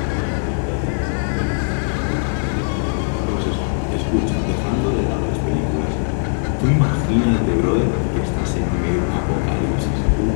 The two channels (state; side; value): silent; right; digital silence